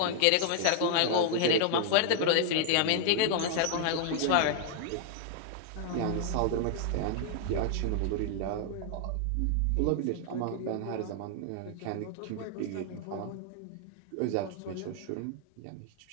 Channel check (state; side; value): different; both; correlation 0.00